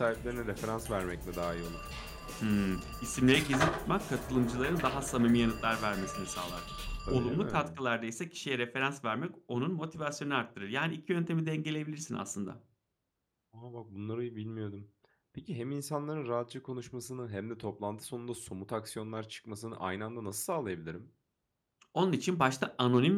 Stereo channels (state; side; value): identical; both; correlation 1.00